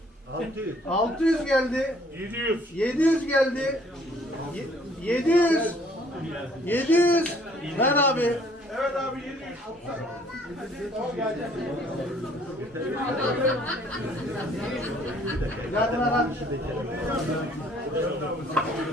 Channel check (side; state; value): both; normal; correlation 0.60